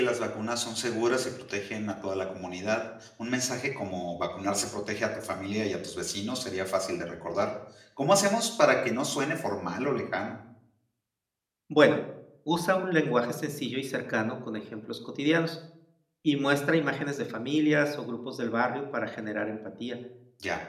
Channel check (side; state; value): both; identical; correlation 1.00